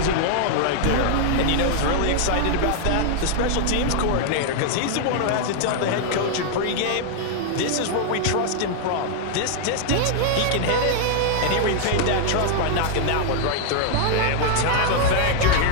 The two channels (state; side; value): different; both; correlation -0.01